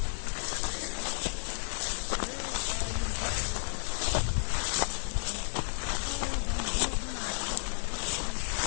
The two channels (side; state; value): right; silent; digital silence